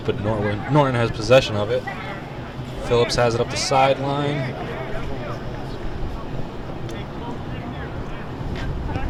Norton has possession of it. Phillips has it up the sideline.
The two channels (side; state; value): both; identical; correlation 1.00